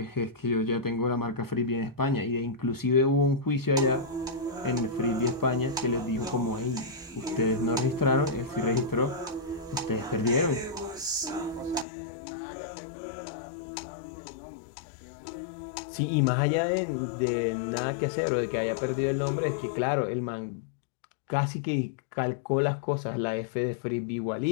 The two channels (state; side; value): drops out; right; at 11.9 s